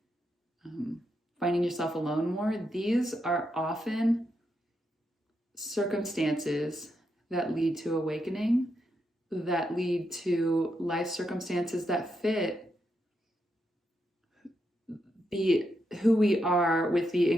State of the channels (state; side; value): normal; both; correlation 0.82